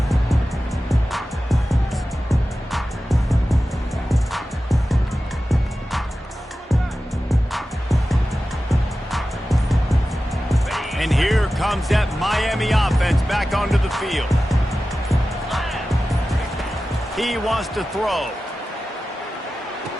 And here comes that Miami offense back onto the field. He wants to throw.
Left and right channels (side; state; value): both; normal; correlation 0.94